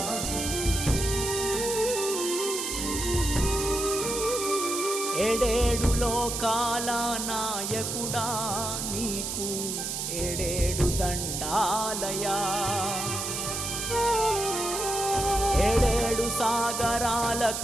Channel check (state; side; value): noise; right; hiss, 3 dB below the sound